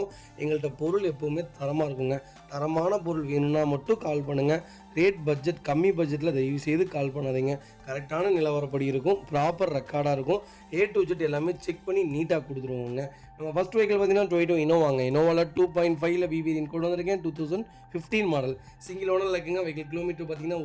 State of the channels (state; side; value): identical; both; correlation 1.00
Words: எங்கள்கிட்ட பொருள் எப்போவுமே தரமாக இருக்குங்க. தரமான பொருள் வேணும்னா மட்டும் கால் பண்ணுங்கள். ரேட் பட்ஜெட் கம்மி பட்ஜெட்டில் தயவு செய்து கால் பண்ணாதீங்க. கரெக்டான நிலவரப்படி இருக்கும், ப்ராப்பர் ரெக்கார்டாக இருக்கும். A to Z எல்லாமே செக் பண்ணி நீட்டாக கொடுத்துருவோங்க. நம்ம ஃபஸ்ட் வெஹிக்கிள் பார்த்தீங்கன்னா டொயோட்டோ இனோவாங்க. இனோவாவில் 2.5 BVN கொண்டு வந்திருக்கேன். 2015 மாடல் சிங்கிள் ஓனரில் இருக்குங்க. வெஹிக்கிள் கிலோமீட்டர் பார்த்தீங்கன்னா